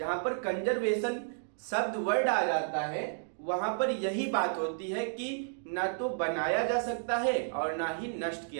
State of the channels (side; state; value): left; silent; digital silence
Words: पर कंजर्वेशन शब्द वर्ड आ जाता है वहां पर यही बात होती है कि ना तो बनाया जा सकता है और ना ही नष्ट